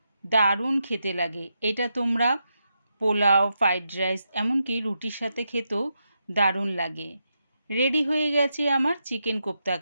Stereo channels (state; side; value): inverted; both; correlation -0.85